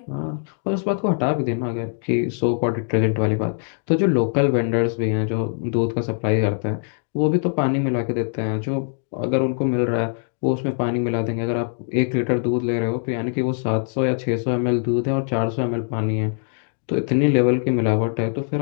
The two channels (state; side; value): silent; right; 55 dB below the other